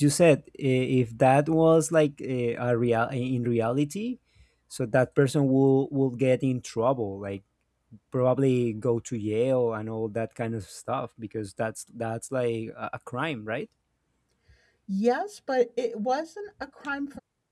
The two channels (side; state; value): both; identical; correlation 1.00